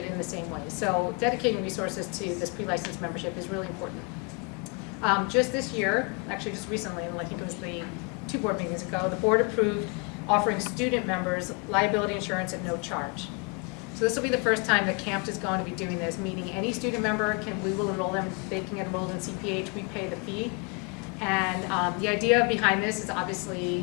in the same way. So dedicating resources to this pre-licensed membership is really important. Just this year, actually just recently, and I think it was the 2 board meetings ago, the board approved offering student members liability insurance at no charge. So this will be the first time that CAMFT is going to be doing this, meaning any student member we will enroll them, they can get enrolled in CPH, we pay the fee. And the idea behind this is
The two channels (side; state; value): right; quieter; 31.8 dB